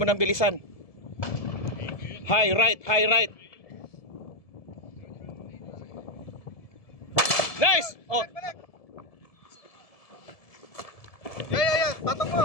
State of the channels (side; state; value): right; late; 1.7 ms